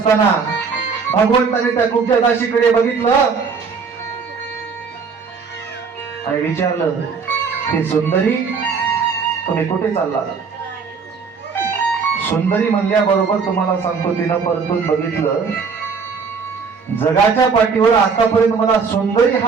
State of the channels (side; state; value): left; quieter; 5.4 dB